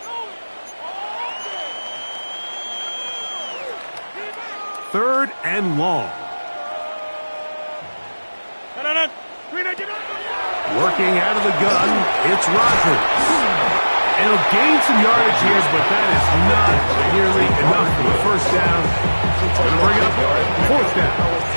Third and long. Working out of the gun, it's Rodgers. And he'll gain some yardage here, but that is not nearly enough for the 1st down. Going to bring up 4th down.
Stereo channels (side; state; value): both; inverted; correlation -1.00